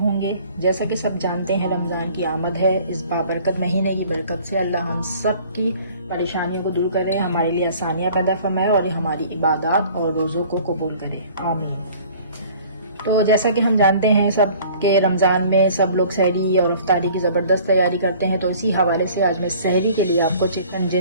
जैसा कि सब जानते हैं रमज़ान की आमद है। इस बाबरकत महीने की बरकत से अल्लाह हम सब की परेशानियों को दूर करे, हमारे लिए आसानियाँ पैदा फरमाए और हमारी इबादत और रोज़ों को कबूल करे, आमीन। तो जैसा कि हम जानते हैं सब के रमज़ान में सब लोग सहरी और अफ्तारी की ज़बरदस्त तैयारी करते हैं। तो इसी हवाले से आज मैं सहरी के लिए आपको चिकन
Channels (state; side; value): inverted; both; correlation -0.51